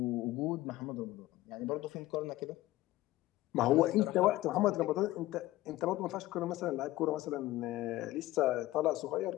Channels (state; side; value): quieter; right; 16.8 dB